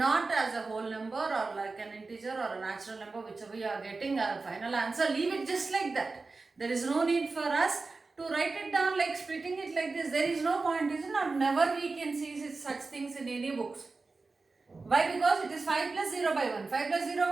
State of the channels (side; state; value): left; quieter; 3.9 dB